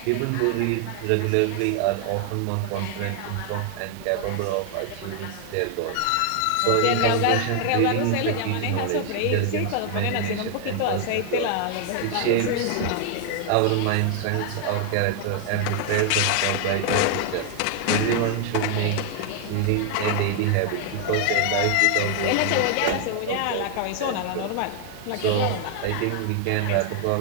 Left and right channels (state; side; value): different; both; correlation 0.00